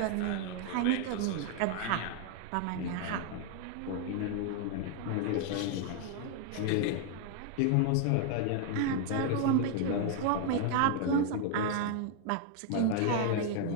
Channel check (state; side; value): different; both; correlation 0.00